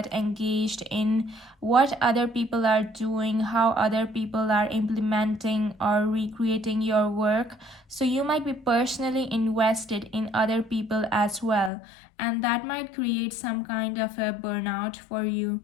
engaged in what other people are doing, how other people are implementing or recreating your work. So you might be personally invested in other people as well, and that might create some kind of a burnout for you.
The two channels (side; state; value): right; drops out; at 11.7 s